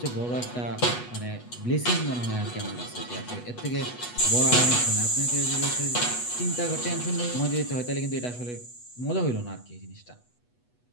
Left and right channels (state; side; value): late; right; 8.2 ms